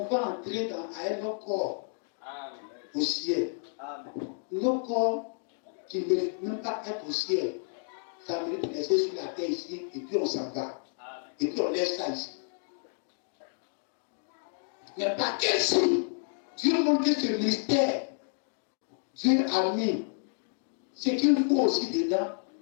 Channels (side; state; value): right; silent; 58 dB below the other